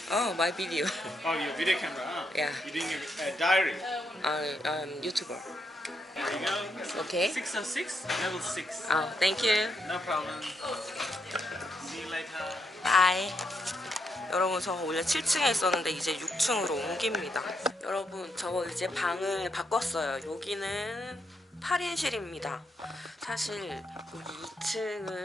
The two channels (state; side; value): normal; both; correlation 0.79